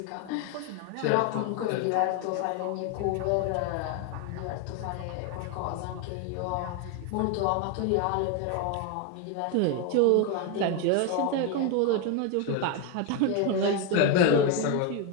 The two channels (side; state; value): both; different; correlation 0.01